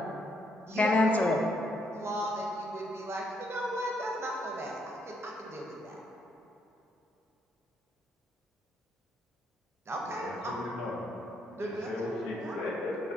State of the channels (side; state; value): both; normal; correlation 0.73